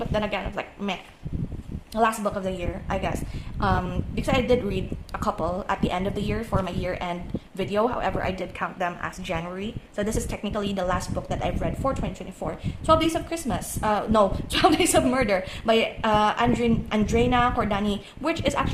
then again, it's like meh. Last book of the year, I guess, because I did read a couple at the end of the year for my year-end video. However, I did count them as January, so this is technically the last book that I've read for 2024. 12 Days of Christmas, 12 Days of Murder by Andrena Cordani, which is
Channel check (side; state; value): both; identical; correlation 1.00